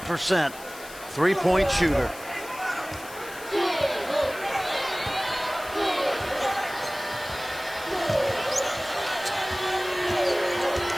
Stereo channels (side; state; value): left; noise; hiss, 16 dB below the sound